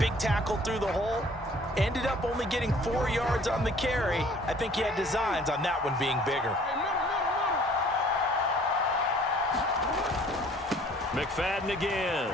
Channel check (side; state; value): both; normal; correlation 0.54